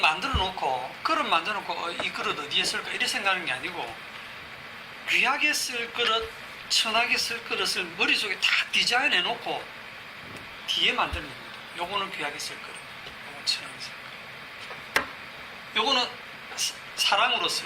놓고 이 그릇 어디에 쓸까 이렇게 생각하는 게 아니고, 귀하게 쓸 그릇, 천하게 쓸 그릇을 머릿속에 다 디자인해 놓고 뒤에 만드는 겁니다. 요거는 귀하게 쓸 그릇, 요거는 천하게 쓸 그릇, 요거는 사랑으로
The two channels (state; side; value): identical; both; correlation 1.00